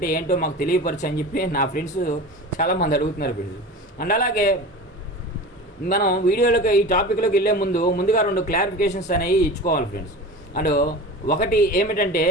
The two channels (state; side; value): normal; both; correlation 0.33